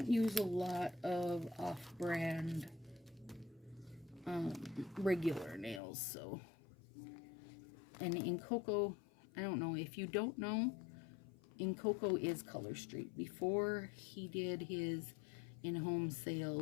use a lot of off-brand regular nails, so. And in Coco, I don't know. If you don't know, in Coco is Color Street. Before he did his in-home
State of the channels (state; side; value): drops out; right; at 5.8 s